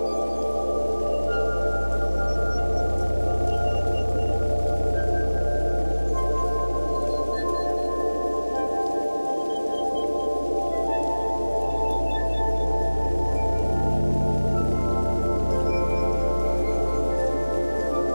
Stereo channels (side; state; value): both; inverted; correlation -1.00